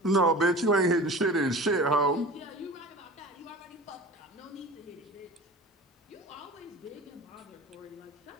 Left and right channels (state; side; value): normal; both; correlation 0.37